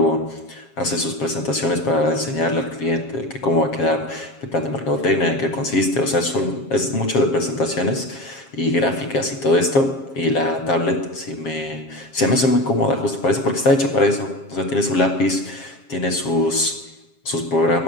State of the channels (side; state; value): right; late; 7.4 ms